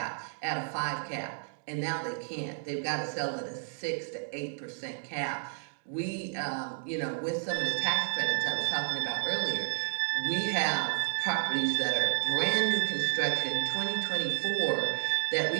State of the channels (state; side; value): silent; left; digital silence